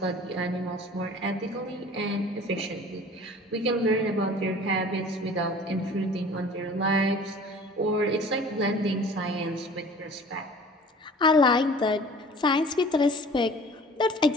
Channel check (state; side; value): normal; both; correlation 0.46